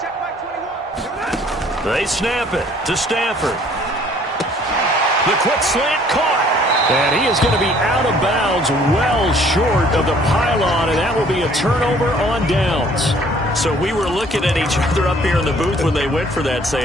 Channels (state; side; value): normal; both; correlation 0.58